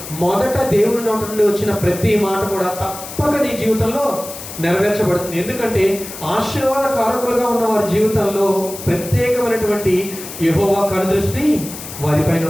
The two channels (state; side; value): noise; left; hiss, 12 dB below the sound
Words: మొదట దేవుని నోట నుండి వచ్చిన ప్రతి మాట కూడా తప్పక నీ జీవితంలో నెరవేర్చబడుతుంది. ఎందుకంటే ఆశీర్వాద కారకులుగా ఉన్న వారి జీవితంలో ప్రత్యేకమైనటువంటి యెహోవా కనుదృష్టి వారిపైన